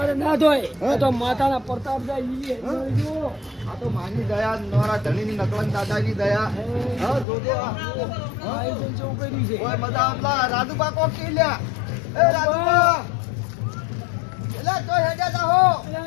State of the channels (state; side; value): drops out; right; at 7.2 s